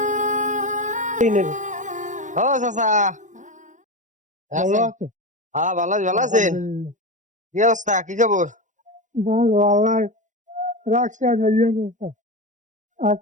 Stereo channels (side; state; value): left; late; 0.36 ms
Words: চাচা, ভালো আছে? হ্যাঁ ভালো ভালো আছেন? কি অবস্থা, কি খবর? ভালো, আল্লাহ রাখছে আর ইয়ে করতে